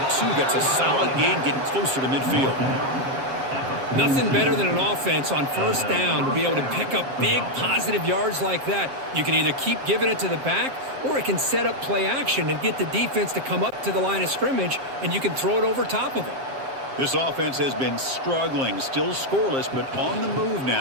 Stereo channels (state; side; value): late; left; 7.5 ms